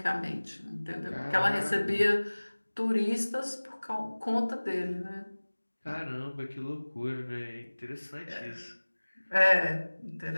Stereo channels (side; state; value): both; inverted; correlation -1.00